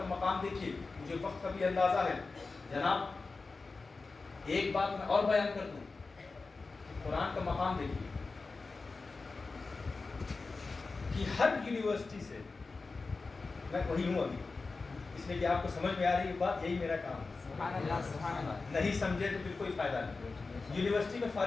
مقام دیکھیے، مجھے وقت کا بھی اندازہ ہے جناب. ایک بات میں اور بیان کر دوں، قرآن کا مقام دیکھیے کہ ہر یونیورسٹی سے، میں وہی ہوں ابھی اس لیے کہ آپ کو سمجھ میں آ رہی ہے بات، یہی میرا کام ہے. سبحان اللہ سبحان اللہ. نہیں سمجھے تو پھر کوئی فائدہ نہیں. یونیورسٹی میں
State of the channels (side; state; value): right; quieter; 4.0 dB